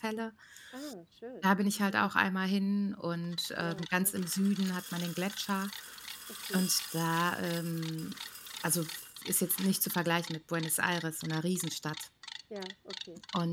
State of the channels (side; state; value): both; identical; correlation 1.00